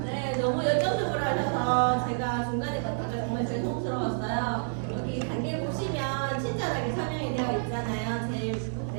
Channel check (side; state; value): left; silent; digital silence